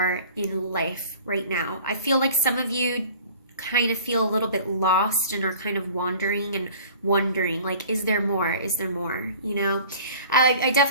in life right now. I feel like some of you kind of feel a little bit lost and are kind of wandering and wondering, like, is there more? Is there more? You know, I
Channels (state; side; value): inverted; both; correlation -0.45